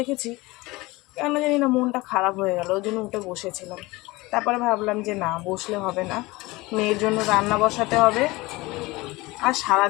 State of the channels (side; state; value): right; quieter; 21.8 dB